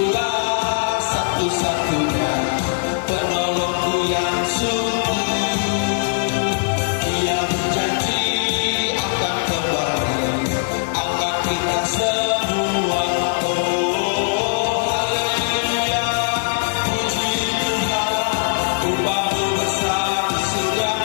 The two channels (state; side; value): silent; right; digital silence